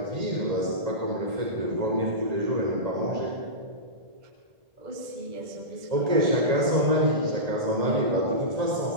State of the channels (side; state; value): left; late; 1.8 ms